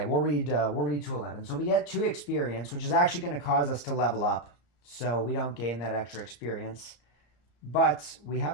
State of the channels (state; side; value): late; right; 34 ms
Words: We'll read 211. So we get 2 experience, which is actually going to cause us to level up. So we don't gain that extra experience. But we have